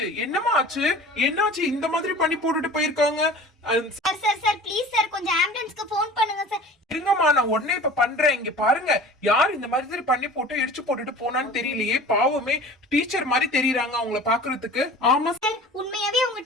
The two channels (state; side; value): normal; both; correlation 0.42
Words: என்னமா ஆச்சு? என்னாச்சு இந்த மாதிரி பண்ணி போட்டுட்டு போயிருக்காங்க? Sir sir sir please sir கொஞ்சம் ஆம்புலன்ஸ்க்கு ஃபோன் பண்ணுங்க சார். இருங்கம்மா நான் உடனே இப்ப பண்றேன். இங்க பாருங்க யார் இந்த மாதிரி பண்ணி போட்டு இடிச்சு போட்டுட்டு போனான்னு தெரியலையே. பாவமே டீச்சர் மாதிரி தெரியறாங்க அவங்கள பாக்குறதுக்கு. ஆமா சார் உண்மையாவே அவங்க